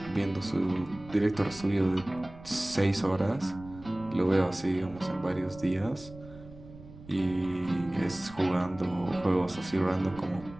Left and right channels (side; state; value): right; noise; rumble, 18 dB below the sound